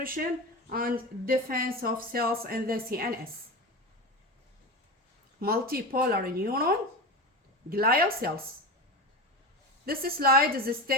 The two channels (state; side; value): normal; both; correlation 0.24